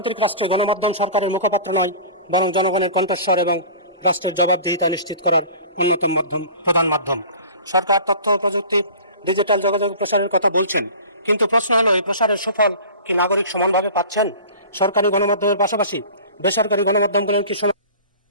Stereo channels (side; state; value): both; inverted; correlation -0.40